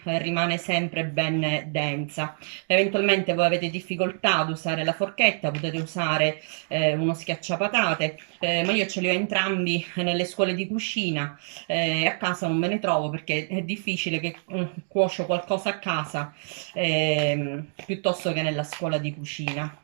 rimane sempre ben densa. Eventualmente voi avete difficoltà ad usare la forchetta, potete usare uno schiacciapatate, ma io ce li ho entrambi nelle scuole di cucina. A casa non me ne trovo perché è difficile che cuocio qualcosa a casa piuttosto che nella scuola di cucina.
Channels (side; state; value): left; silent; digital silence